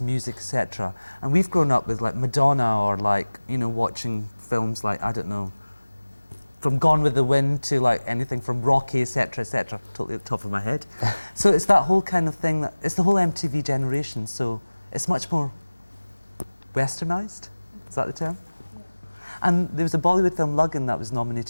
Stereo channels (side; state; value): both; inverted; correlation -1.00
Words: music, etc. And we've grown up with like Madonna, or like, you know, watching films like, I don't know, from Gone with the Wind to like anything from Rocky, etc., etc. Totally at the top of my head. So it's that whole kind of thing, that it's the whole MTV generation. So it's much more Westernized. Is that the term? Yeah. And there was a Bollywood film, Luggan, that was